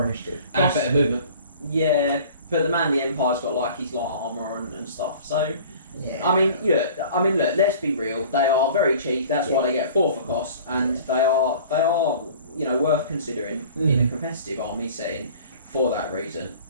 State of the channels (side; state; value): both; inverted; correlation -0.46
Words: initiative. And better movement. Yeah, but the man of the Empire's got like his light armor and stuff. So Yeah. I mean, look. Let's be real. They are very cheap. That's why they get 4 for cost, and they are worth considering in a competitive army setting for that reason.